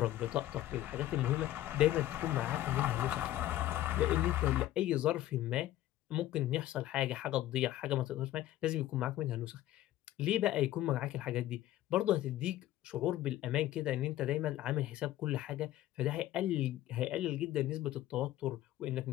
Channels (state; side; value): quieter; right; 14.1 dB